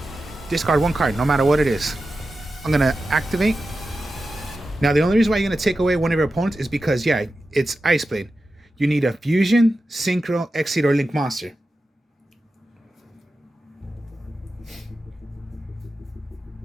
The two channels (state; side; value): normal; both; correlation 0.92